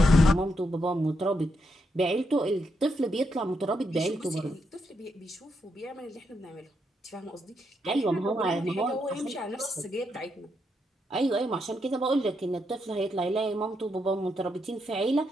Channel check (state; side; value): normal; both; correlation 0.80